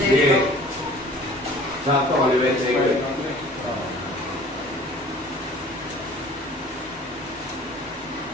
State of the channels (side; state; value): both; normal; correlation 0.48